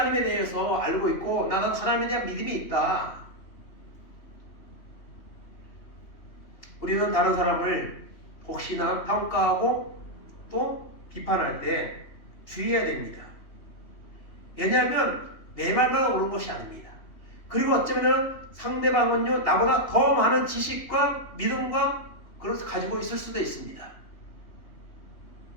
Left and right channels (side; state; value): right; late; 3.2 ms